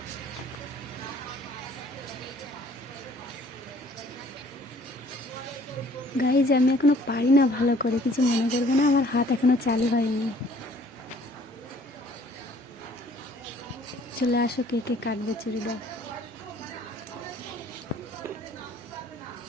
গাইজ আমি এখনো পারি না ভালো করে, কিছু মনে করবে না, আমার হাত এখনো চালু হয়নি। চলে আসো কে কে কাটবে চুড়িদার।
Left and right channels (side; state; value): both; normal; correlation 0.57